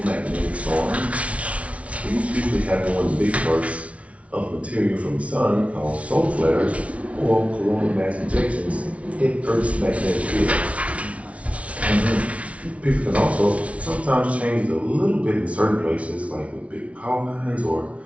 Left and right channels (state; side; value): late; left; 0.064 ms